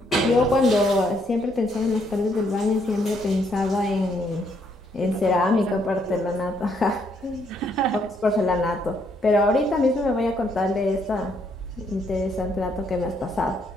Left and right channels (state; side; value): normal; both; correlation 0.71